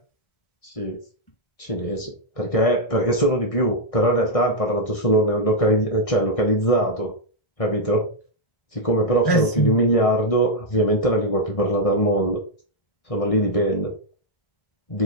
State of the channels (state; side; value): late; right; 1.6 ms